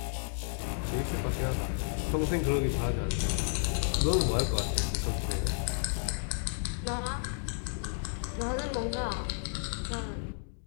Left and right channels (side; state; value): right; silent; digital silence